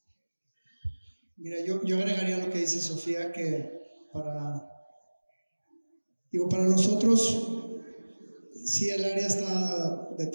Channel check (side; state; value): both; inverted; correlation -1.00